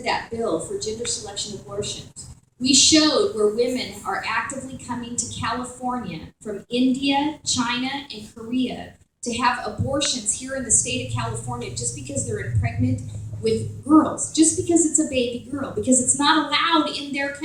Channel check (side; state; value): both; identical; correlation 1.00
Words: that bill for gender selection abortions, we showed where women are actively coming to California from India, China, and Korea to have abortions here in the state of California just because they're pregnant with girls, just because it's a baby girl, because it's not allowed in their